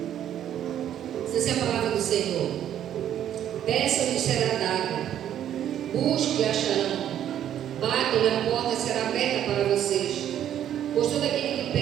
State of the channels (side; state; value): left; quieter; 10.6 dB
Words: Essa é a palavra do Senhor. Peçam e será dado. Busquem e acharão. Batam e a porta será aberta para vocês. Pois todo aquele que